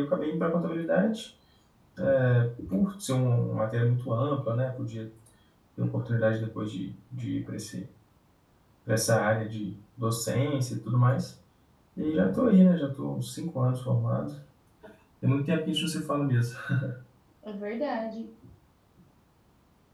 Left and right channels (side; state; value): both; identical; correlation 1.00